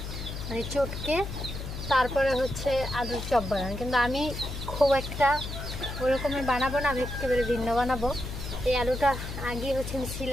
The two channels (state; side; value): noise; left; hum, 7 dB below the sound